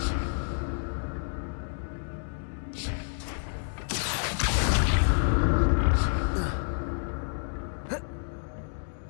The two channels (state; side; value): silent; right; digital silence